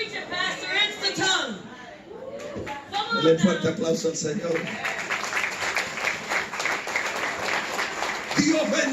it, Pastor. It's the tongue. Come on Dale fuerte now. aplauso al Señor. Dios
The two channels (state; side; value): identical; both; correlation 1.00